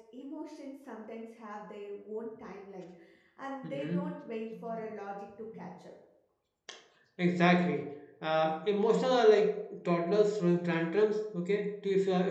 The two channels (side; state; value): both; identical; correlation 1.00